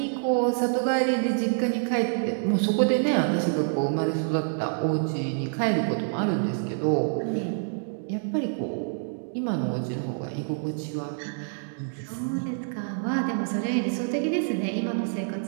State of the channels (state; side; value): silent; left; digital silence